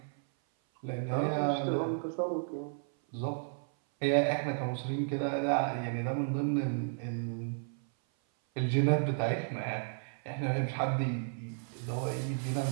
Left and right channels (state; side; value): silent; left; 56 dB below the other